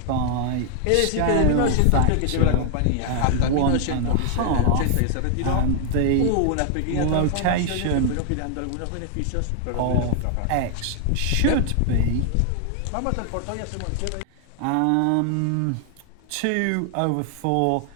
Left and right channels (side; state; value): both; different; correlation 0.00